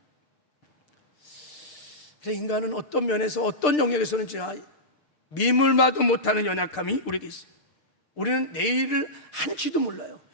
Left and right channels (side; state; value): right; late; 6.7 ms